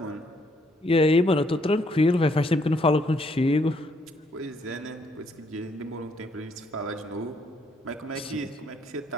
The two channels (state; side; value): normal; both; correlation 0.70